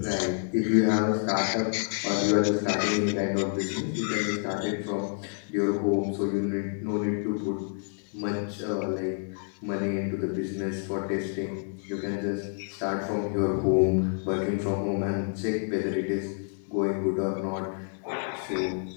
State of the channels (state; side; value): silent; right; 59 dB below the other